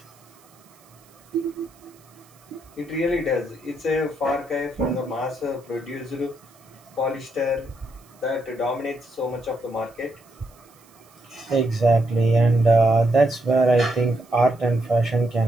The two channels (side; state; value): right; noise; hiss, 29 dB below the sound